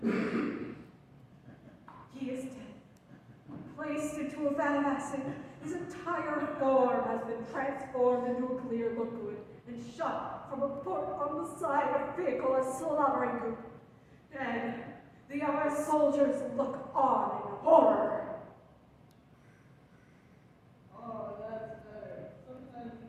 He is dead. Placed into a vat of acid, his entire form has been transformed into a clear liquid and shot from a port on the side of the vehicle as slobbering goop. And the other soldiers look on in horror. Oh, that's better. Sometimes you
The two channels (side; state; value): both; identical; correlation 1.00